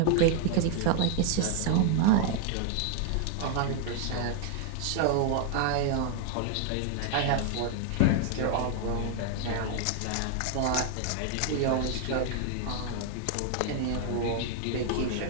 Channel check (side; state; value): both; different; correlation 0.00